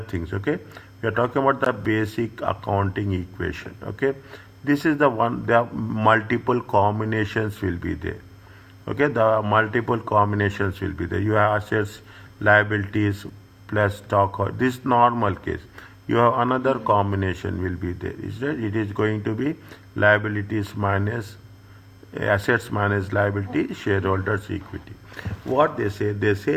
Okay, we are talking about the basic accounting equation. Okay, this is the one. The multiple combinations will be there. Okay, the multiple combinations will be there. You have assets, liabilities plus stock. Or this normal case, you have another combination will be there. Is that it is going to be liabilities minus assets minus liability, shareholders equity. What they say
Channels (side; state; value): both; identical; correlation 1.00